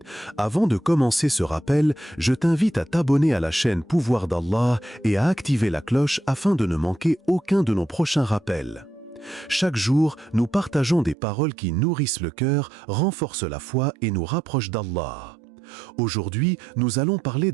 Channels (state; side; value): drops out; left; at 11.2 s